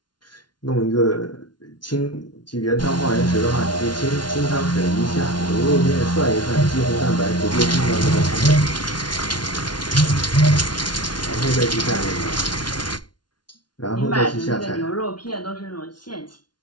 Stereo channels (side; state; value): right; late; 0.70 ms